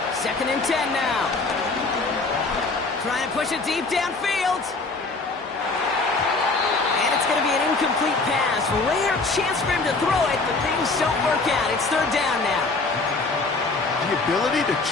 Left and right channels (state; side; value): quieter; right; 3.7 dB